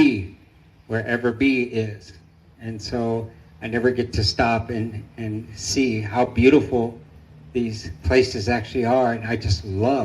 wherever B is. And so I never get to stop and see how beautiful these places actually are. And I just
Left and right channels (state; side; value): identical; both; correlation 1.00